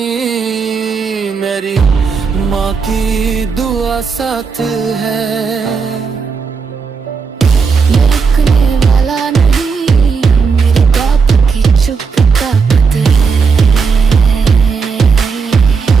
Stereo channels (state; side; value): quieter; left; 5.3 dB